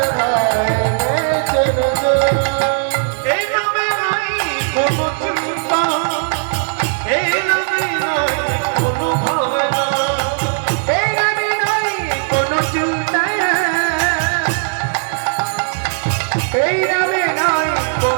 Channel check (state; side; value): silent; left; digital silence